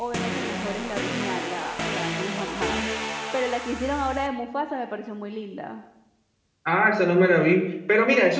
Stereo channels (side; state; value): both; identical; correlation 1.00